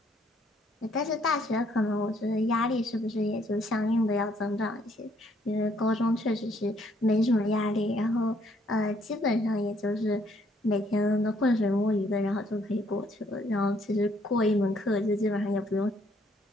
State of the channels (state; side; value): normal; both; correlation 0.67